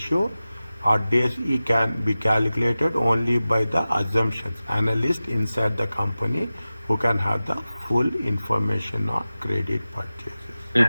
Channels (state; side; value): inverted; both; correlation -0.95